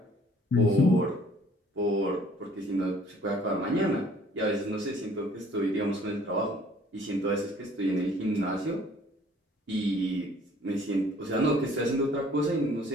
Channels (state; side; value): normal; both; correlation 0.56